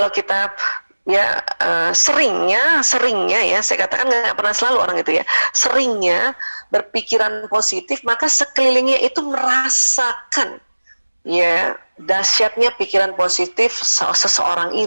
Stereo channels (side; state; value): both; inverted; correlation -1.00